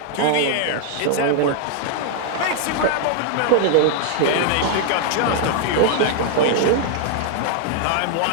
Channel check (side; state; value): both; different; correlation 0.00